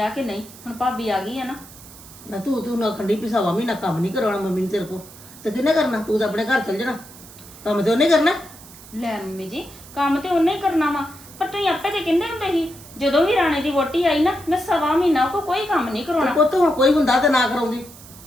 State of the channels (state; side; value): noise; right; hiss, 19 dB below the sound